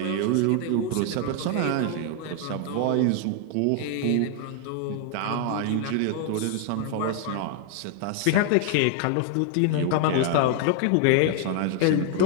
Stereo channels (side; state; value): both; different; correlation 0.00